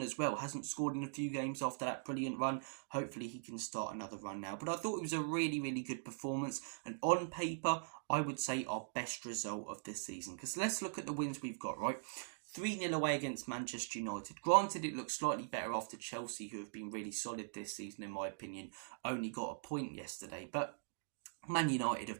well. Hasn't scored in a few games after that brilliant run. Hopefully he can start another run now. But I thought it was a really, really good performance. And on paper, I would say our best result of this season. Because let's look at the wins we've got, right? 3-0 away against Manchester United. Granted, it looks slightly better after Chelsea, who have been really solid this season, in my opinion, only got a point yesterday. But Man United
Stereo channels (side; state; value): left; silent; digital silence